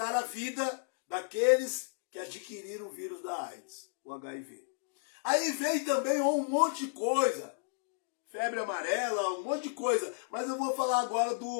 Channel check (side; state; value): right; silent; digital silence